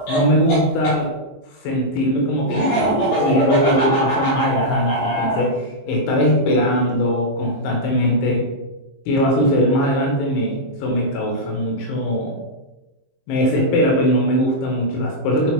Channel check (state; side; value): late; right; 23 ms